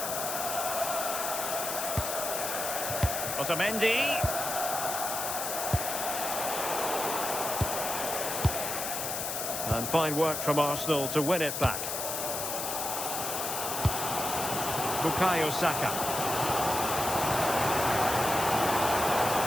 Otamendi. And fine work from Arsenal to win it back. Bukayo Saka.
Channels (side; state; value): left; noise; hiss, 3 dB below the sound